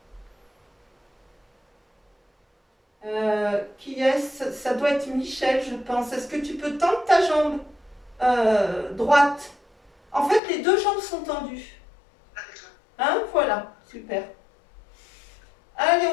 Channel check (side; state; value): right; drops out; at 10.4 s